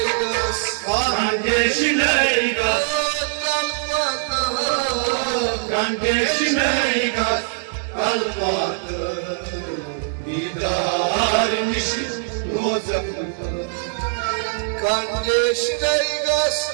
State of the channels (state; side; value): silent; left; digital silence